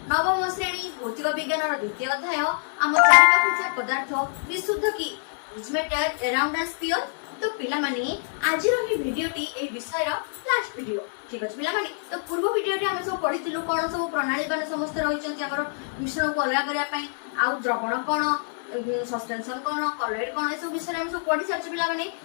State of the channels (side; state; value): right; silent; 56 dB below the other